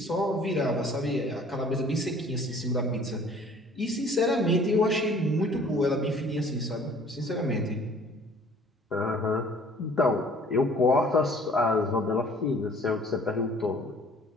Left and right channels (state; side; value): normal; both; correlation 0.53